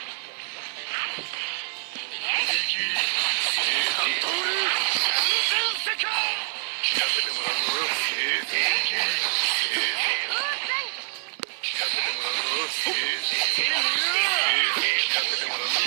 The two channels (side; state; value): left; silent; 61 dB below the other